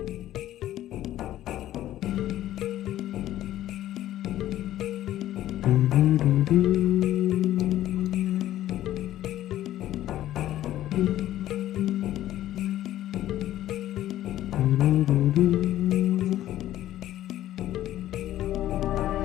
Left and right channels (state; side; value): quieter; right; 13.4 dB